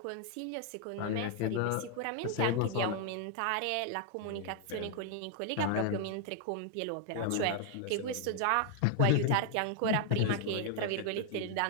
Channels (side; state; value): both; different; correlation 0.00